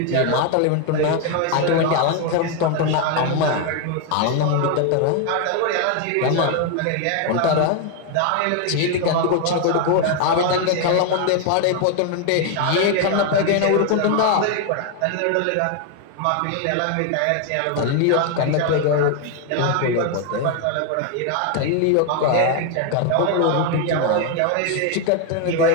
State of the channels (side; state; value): both; different; correlation 0.01